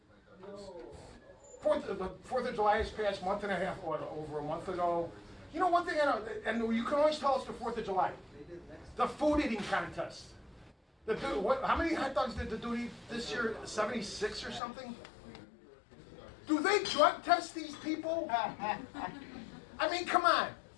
Fourth of July has passed, month and a half, over a month ago. You know, one thing I know, and you can always tell us the 4th of July, the food eating contest. How many hot dogs did the dude eat this year? 76 or something? Do they drug test these people? I mean, come on.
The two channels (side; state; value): right; drops out; at 14.6 s